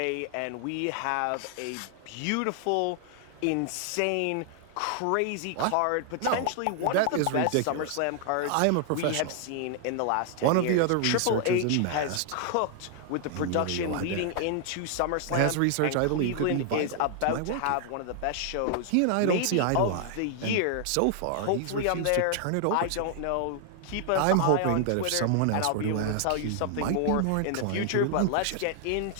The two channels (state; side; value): different; both; correlation 0.00